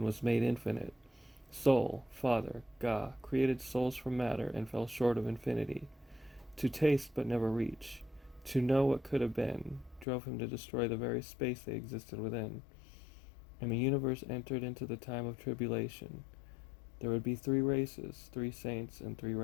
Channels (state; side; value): drops out; right; at 10.1 s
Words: was made infinite. Soul, father, ga, created souls from matter, and fell short of infinity. To taste but never reach, to know what could have been, drove him to destroy the very space they existed within. And the universe entered into the time of tribulation. There would be 3 races, 3 saints, and 3